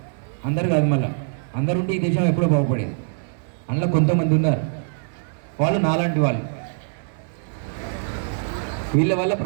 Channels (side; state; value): left; silent; digital silence